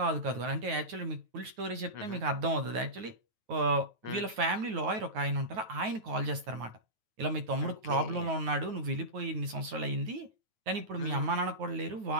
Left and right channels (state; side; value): late; left; 9.3 ms